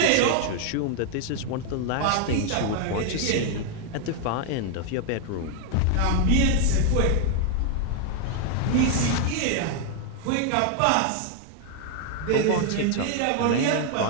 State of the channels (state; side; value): different; both; correlation 0.00